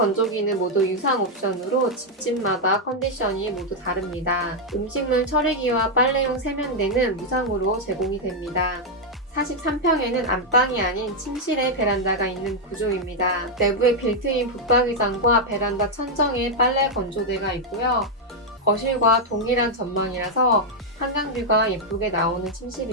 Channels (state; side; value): normal; both; correlation -0.01